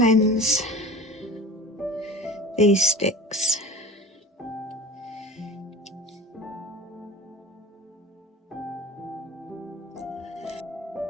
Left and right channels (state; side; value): normal; both; correlation 0.38